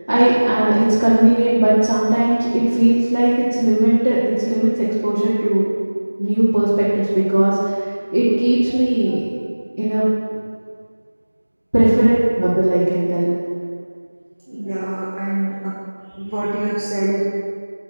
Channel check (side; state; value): both; inverted; correlation -1.00